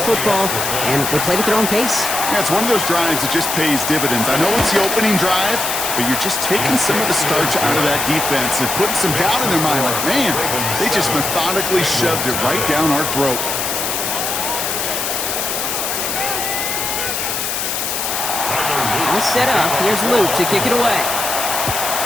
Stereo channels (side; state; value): left; noise; hiss, 2 dB below the sound